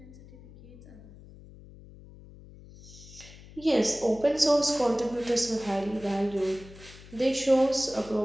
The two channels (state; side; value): noise; left; hum, 19 dB below the sound